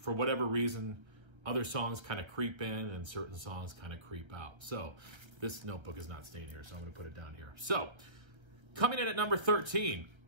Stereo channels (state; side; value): late; left; 1.3 ms